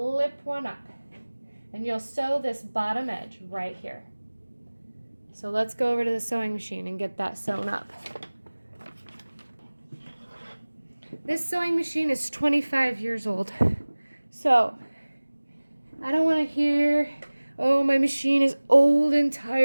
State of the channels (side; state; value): both; inverted; correlation -1.00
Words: one up. And you'll sew this bottom edge right here. So let's go over to the sewing machine and get that sewn up. This sewing machine is 25 years old. So I don't want to hear, oh, my machine is old and